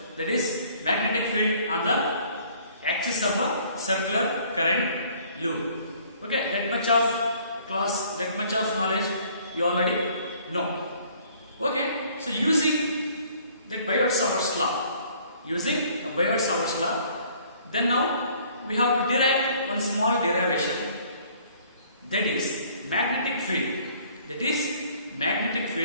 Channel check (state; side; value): inverted; both; correlation -0.57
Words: that is magnetic field on the axis of a circular current loop. Okay, that much of class, that much of knowledge you already know. Okay, so using that Biot-Savart's law, then now we have to derive one small derivation, that is magnetic field. That is magnetic